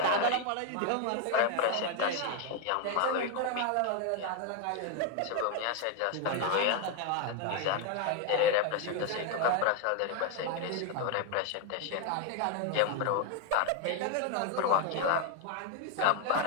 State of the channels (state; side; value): different; both; correlation 0.01